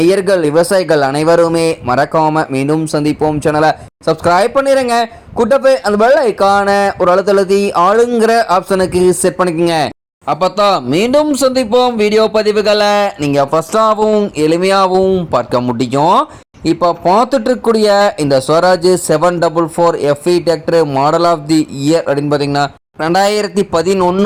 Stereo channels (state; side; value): identical; both; correlation 1.00